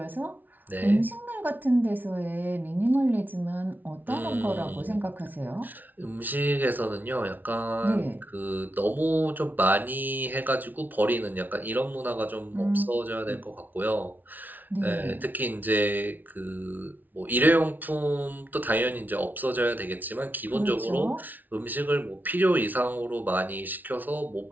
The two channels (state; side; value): late; left; 0.083 ms